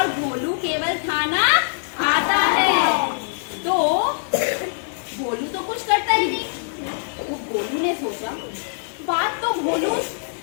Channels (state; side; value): silent; right; digital silence